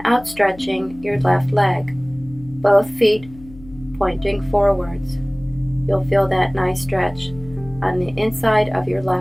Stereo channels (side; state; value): left; noise; hum, 19 dB below the sound